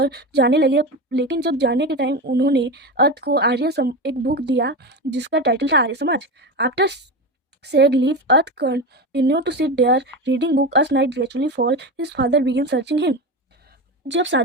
जाने लगे, लेकिन जब जाने के टाइम उन्होंने अर्थ को एक बुक दिया जिसका टाइटल था Arya Samaj. After said leave, Earth continued to sit there reading book. As night gradually fall, his father began searching him. जब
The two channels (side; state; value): both; normal; correlation 0.21